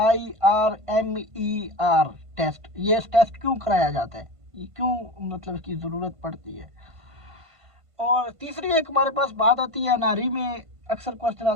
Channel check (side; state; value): left; late; 1.5 ms